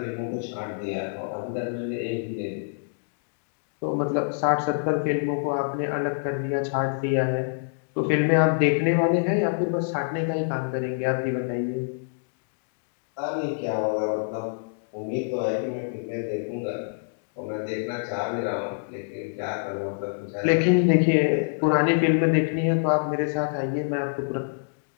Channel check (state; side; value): silent; right; digital silence